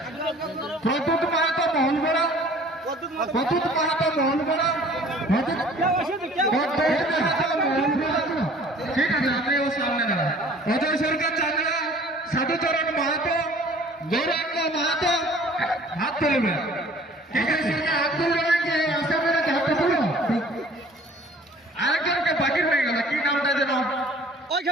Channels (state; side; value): normal; both; correlation 0.51